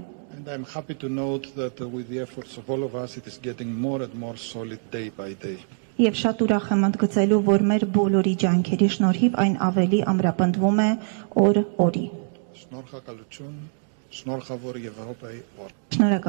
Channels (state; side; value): silent; left; digital silence